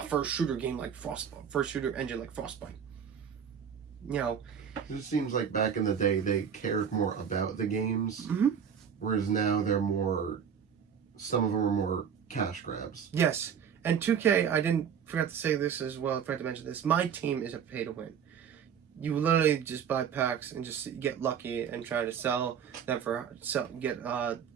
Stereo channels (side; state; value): left; quieter; 7.7 dB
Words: first shooter game like first shooter engine like Frostbite. You know, it seems like back in the day they cared more about the games, whereas now they're more. Some of them are more cash grabs. Yes, and 2K. I forgot to say this as well. I forgot to mention this. My team is a pay to win. You literally just buy packs and just get lucky and try to sell them get